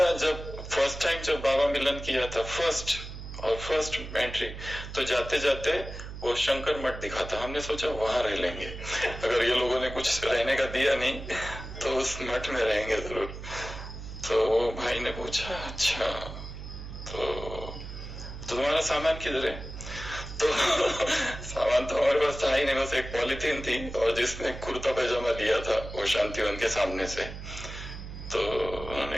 जब फर्स्ट टाइम जब बाबा मिलन किया था, फर्स्ट एंट्री, तो जाते जाते वो शंकर मठ दिखा था। हमने सोचा वहां रह लेंगे, अगर ये लोगों ने कुछ रहने का दिया नहीं तो उस मठ में रहेंगे जरूर। तो वो भाई ने पूछा अच्छा तो तुम्हारा सामान किधर है? तो सामान तो हमारे पास था ही नहीं, बस एक पॉलिथीन थी और जिसमें कुर्ता पैजामा लिया था वो शांतिवन के सामने से। तो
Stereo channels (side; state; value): right; noise; hum, 10 dB below the sound